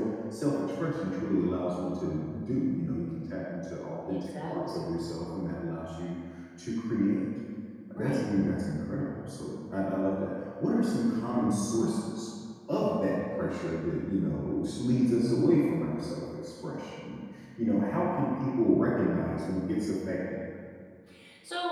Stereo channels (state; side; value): identical; both; correlation 1.00